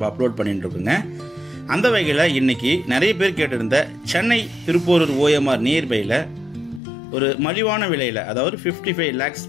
அப்லோட் பண்ணிட்டு இருக்கோங்க. அந்த வகையில் இன்னைக்கு நிறைய பேர் கேட்டிருந்த சென்னை திருப்போரூர் ஓஎம்ஆர் நியர்பையில் ஒரு மலிவான விலையில், அதாவது 55 lakhs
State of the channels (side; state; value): right; drops out; at 6.8 s